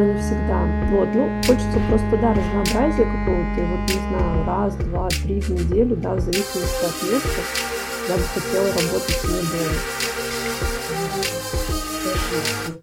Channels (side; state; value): both; identical; correlation 1.00